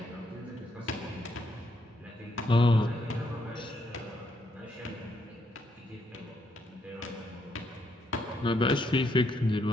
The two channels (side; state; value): both; normal; correlation 0.75